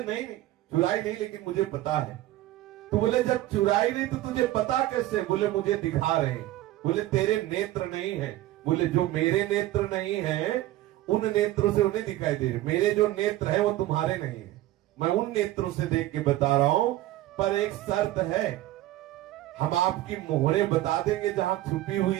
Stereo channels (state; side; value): quieter; left; 15.4 dB